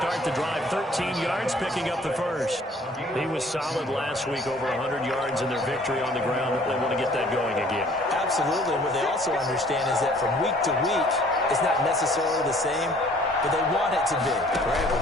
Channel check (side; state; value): both; normal; correlation 0.56